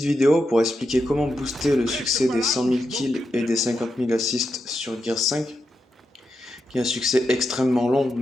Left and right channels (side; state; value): both; normal; correlation 0.86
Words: vidéo pour expliquer comment booster le succès des 100 000 kills et des 50 000 assists sur Gears 5, qui est un succès extrêmement long,